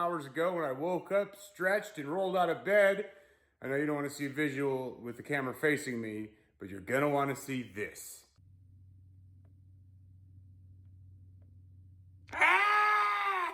ago when I woke up, stretched, and rolled out of bed. I know you don't want to see a visual with the camera facing me, but you're going to want to see this.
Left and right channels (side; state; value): both; identical; correlation 1.00